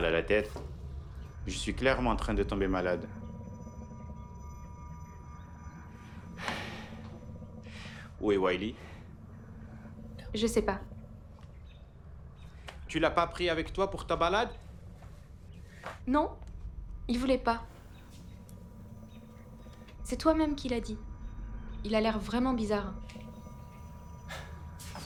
à la tête. Je suis clairement en train de tomber malade. Où est Wiley? Je sais pas. Tu l'as pas pris avec toi pour ta balade? Non, il voulait pas. C'est toi-même qui l'as dit. Il a l'air vraiment bizarre.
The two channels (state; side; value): identical; both; correlation 1.00